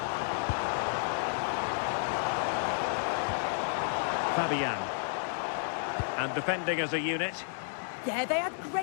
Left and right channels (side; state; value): right; silent; digital silence